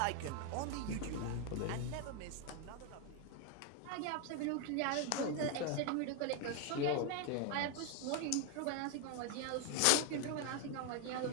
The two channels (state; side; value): different; both; correlation 0.01